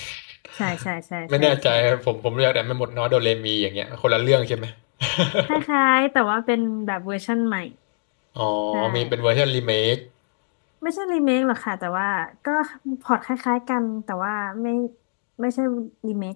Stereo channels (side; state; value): right; silent; digital silence